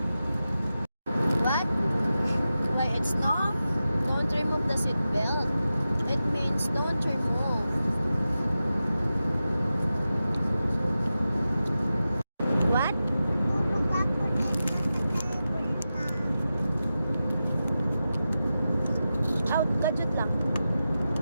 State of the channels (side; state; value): both; inverted; correlation -0.92